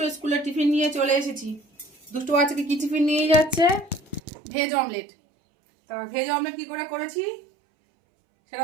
স্কুলের টিফিন নিয়ে চলে এসেছি। দুষ্টু বাচ্চাকে কি টিফিন নিয়ে যাচ্ছে? Veg omelette. তা ভেজ অমলেট কি করে করেছি সেটা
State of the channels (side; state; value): left; drops out; at 4.2 s